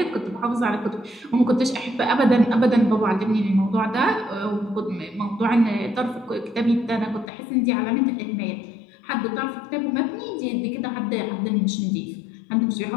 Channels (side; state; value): right; drops out; at 7.3 s